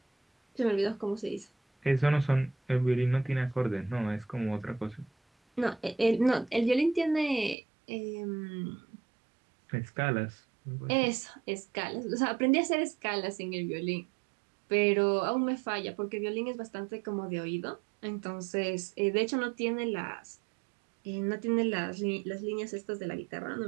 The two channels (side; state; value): left; drops out; at 7.6 s